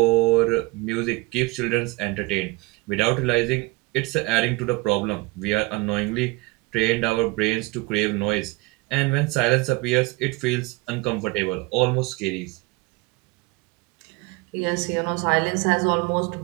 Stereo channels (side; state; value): left; quieter; 23.3 dB